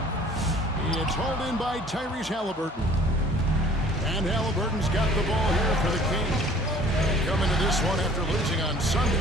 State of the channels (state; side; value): normal; both; correlation 0.52